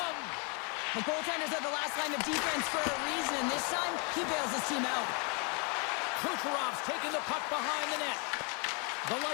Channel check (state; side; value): quieter; right; 35.1 dB